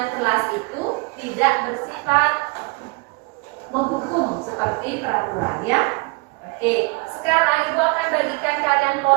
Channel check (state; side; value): quieter; left; 27.9 dB